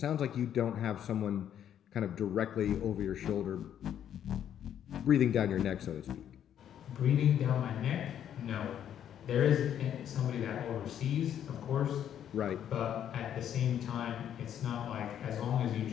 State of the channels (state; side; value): quieter; right; 9.9 dB